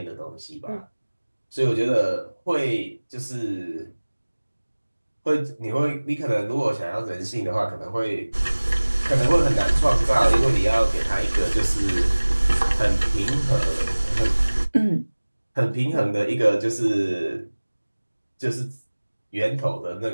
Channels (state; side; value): inverted; both; correlation -1.00